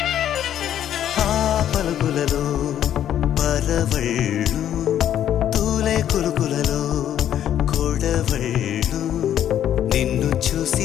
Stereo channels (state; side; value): quieter; right; 10.6 dB